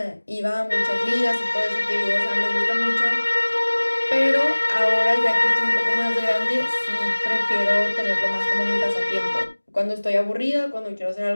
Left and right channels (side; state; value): both; inverted; correlation -1.00